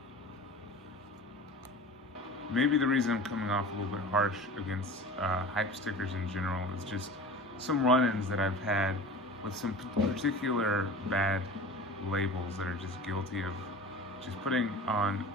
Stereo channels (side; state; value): both; normal; correlation 0.37